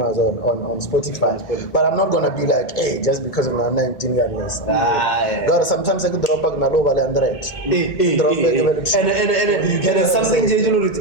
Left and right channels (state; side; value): late; right; 2.1 ms